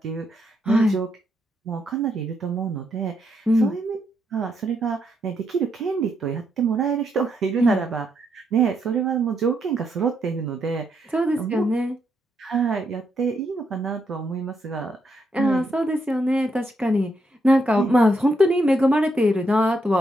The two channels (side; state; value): both; normal; correlation 0.78